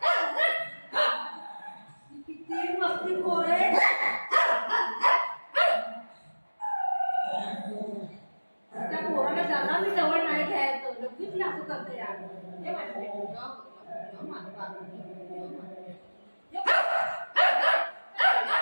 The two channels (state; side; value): inverted; both; correlation -1.00